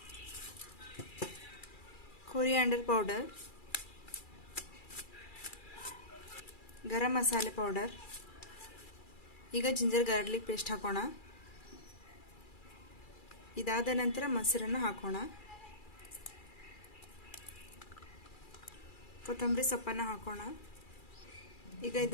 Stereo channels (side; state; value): right; late; 2.3 ms